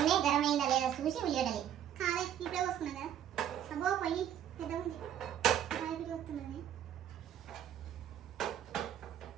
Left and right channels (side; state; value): left; quieter; 10.2 dB